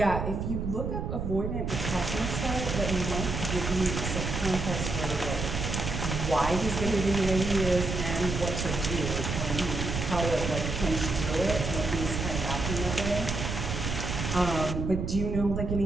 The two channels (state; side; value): noise; right; rumble, 3 dB below the sound